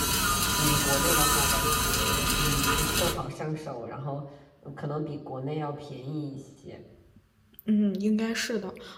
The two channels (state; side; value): identical; both; correlation 1.00